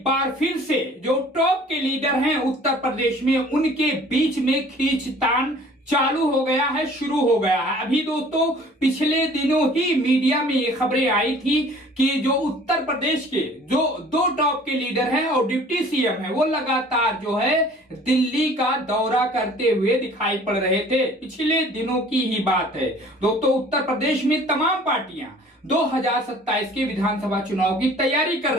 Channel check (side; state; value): both; normal; correlation 0.50